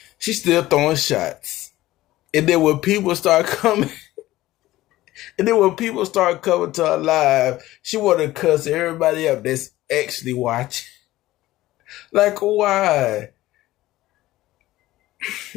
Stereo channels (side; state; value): right; quieter; 16.4 dB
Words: She's still throwing shots. And then when people start coming, coming to her live, she want to cuss everybody up that's actually watching. Like, why?